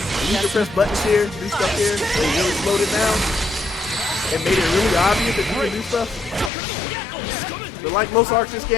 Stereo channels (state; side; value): drops out; right; at 6.5 s